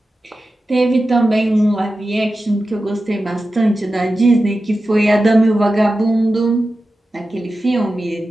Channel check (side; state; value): both; normal; correlation 0.93